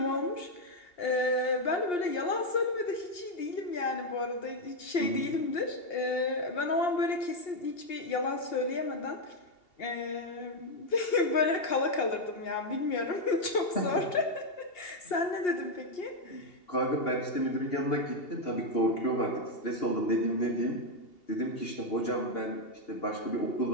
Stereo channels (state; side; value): late; right; 2.8 ms